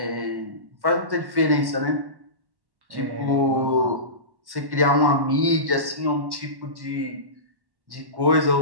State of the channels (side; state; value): left; late; 1.1 ms